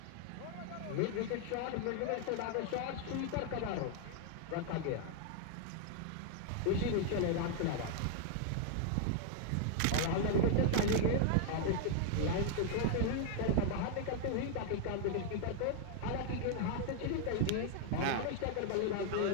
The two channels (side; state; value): both; different; correlation 0.00